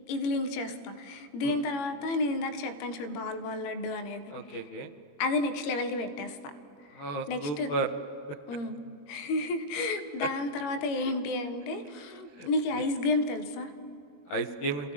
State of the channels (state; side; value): late; right; 21 ms